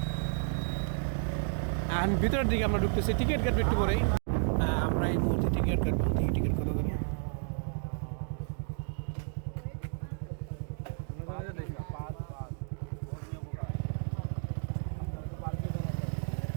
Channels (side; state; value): left; silent; digital silence